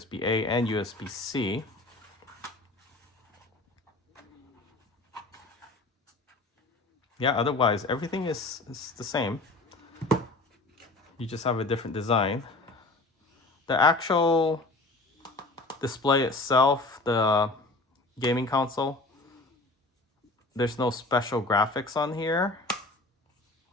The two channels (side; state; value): right; quieter; 3.0 dB